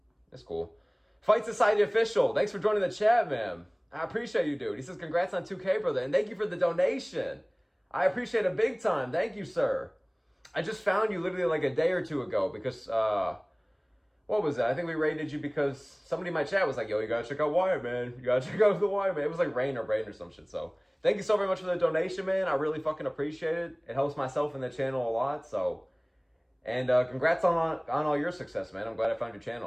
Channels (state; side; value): identical; both; correlation 1.00